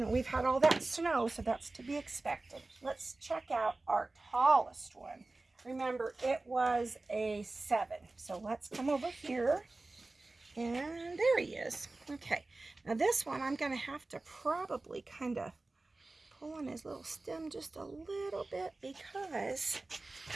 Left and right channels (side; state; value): left; quieter; 3.2 dB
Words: we've had all that snow, so that's to be expected. Let's check out our tallest one. Remember, it was a 7. So let's come over here. And there he is. Okay. Now this one, I'm going to have to probably kind of pull on his little stem just a little bit because